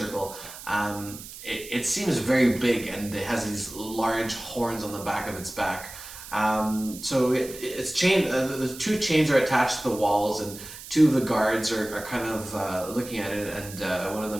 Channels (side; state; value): right; noise; hiss, 14 dB below the sound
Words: It seems very big, and it has these large horns on the back of its back. So it's chained. The two chains are attached to the walls, and two of the guards are kind of looking at it, and one of